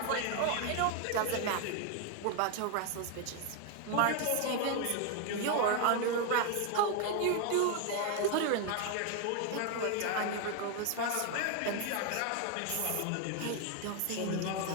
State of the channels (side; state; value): both; different; correlation 0.01